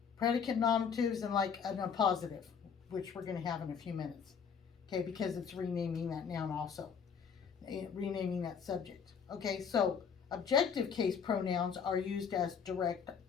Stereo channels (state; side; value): quieter; right; 6.7 dB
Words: predicate nominatives, and like an appositive, which we're going to have in a few minutes. Okay, because it's renaming that noun also, renaming that subject. Okay, so objective case pronouns are used as direct